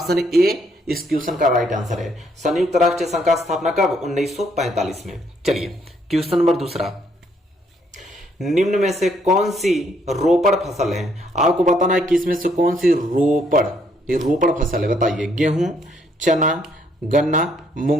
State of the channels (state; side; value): normal; both; correlation 0.69